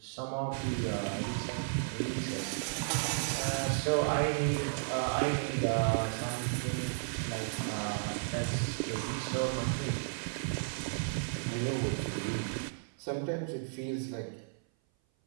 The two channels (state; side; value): silent; left; 55 dB below the other